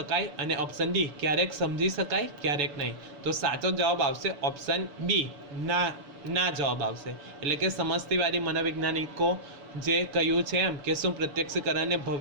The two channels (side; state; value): left; late; 7.0 ms